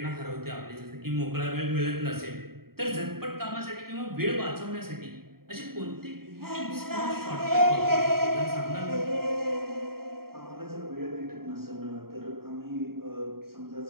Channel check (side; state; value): left; late; 0.94 ms